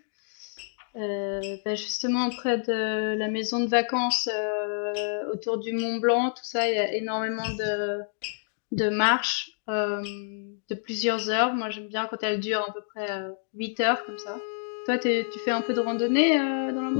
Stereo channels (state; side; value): silent; right; digital silence